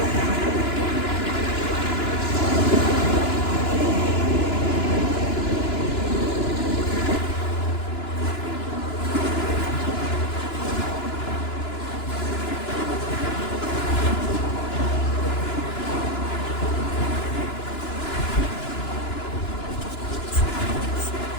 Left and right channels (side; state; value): right; late; 2.9 ms